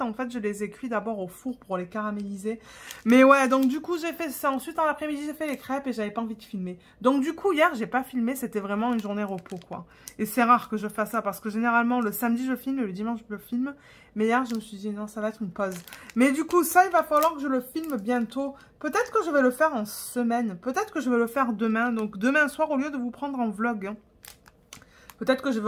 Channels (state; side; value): identical; both; correlation 1.00